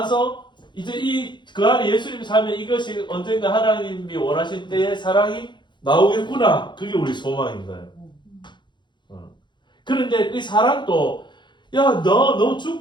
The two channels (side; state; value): right; late; 0.22 ms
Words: 이제 그 안에 예수님이 살면 이것이 언젠가 하나님이 원하신 때에 사랑이 나오겠구나. 그게 우리 소망인 거예요. 그런데 이 사랑도 야, 너